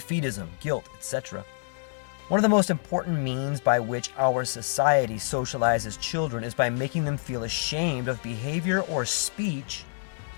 guilt, etc. One of the most important means by which our society socializes children is by making them feel ashamed of behavior or speech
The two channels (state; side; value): silent; right; digital silence